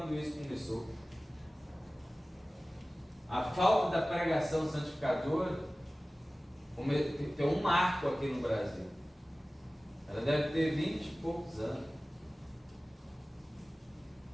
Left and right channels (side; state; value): both; normal; correlation 0.97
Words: isso começou. A falta da pregação santificadora tem um marco aqui no Brasil. Ela deve ter 20 e poucos anos.